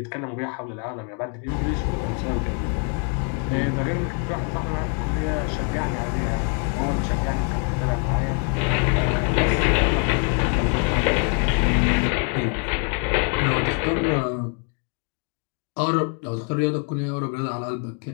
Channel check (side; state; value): right; quieter; 37.0 dB